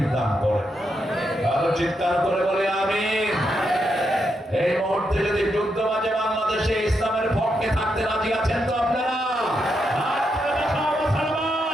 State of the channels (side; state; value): both; normal; correlation 0.82